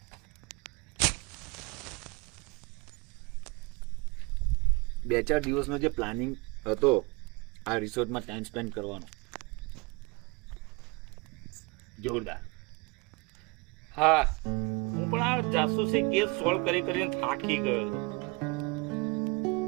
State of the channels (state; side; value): quieter; left; 27.8 dB